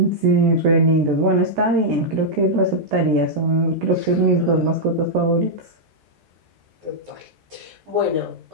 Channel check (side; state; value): left; late; 13 ms